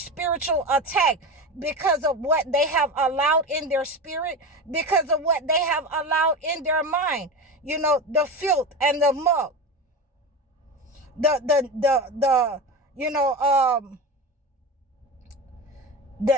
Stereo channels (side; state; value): both; normal; correlation 0.25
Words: attack because of what they have allowed in their spirit, because of what they have allowed in their mind. You know, the filth and the muck, the you know,